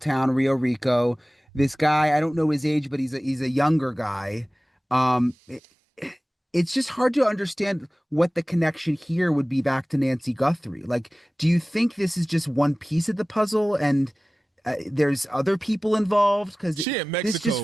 Rio Rico. This guy, I don't know his age, but he's a younger guy. It's just hard to understand what the connection here would be back to Nancy Guthrie. Like, do you think this is just one piece of the puzzle and there's other people involved? Because this just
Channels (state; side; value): normal; both; correlation 0.98